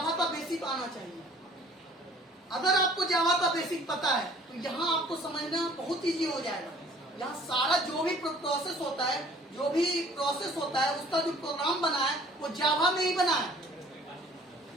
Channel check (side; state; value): both; normal; correlation 0.53